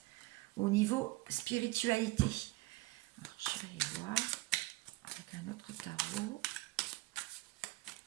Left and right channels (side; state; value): left; quieter; 21.6 dB